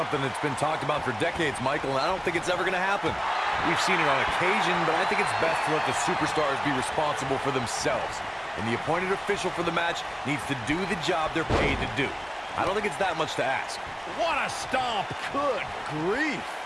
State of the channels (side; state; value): both; identical; correlation 1.00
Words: that's been talked about for decades, Michael, and I don't think it's ever going to happen. We've seen it on occasion, but I think it's best to let the superstars be responsible for themselves. And the appointed official for the match needs to do the job they're paid to do. I don't think it's that much to ask. What a stomp. Good grief.